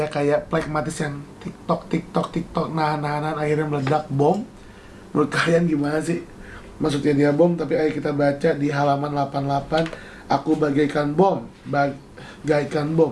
kayak pragmatis yang tiktok nahan akhirnya meledak bom? Menurut kalian gimana sih? Maksudnya dia bom, tapi ayo kita baca di halaman 88. Aku bagaikan bom, bagaikan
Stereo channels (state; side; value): identical; both; correlation 1.00